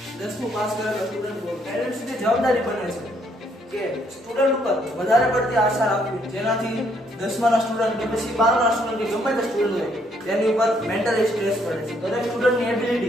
10મું પાસ કરેલો સ્ટુડન્ટ પેરેન્ટ્સની જવાબદારી બને છે કે સ્ટુડન્ટ ઉપર વધારે પડતી આશા રાખવી, જેનાથી 10માના સ્ટુડન્ટ કે પછી 12ના સ્ટુડન્ટ કે ગમે તે સ્ટુડન્ટ હોય તેની ઉપર મેન્ટલી સ્ટ્રેસ પડે છે. દરેક સ્ટુડન્ટની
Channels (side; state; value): both; normal; correlation 0.70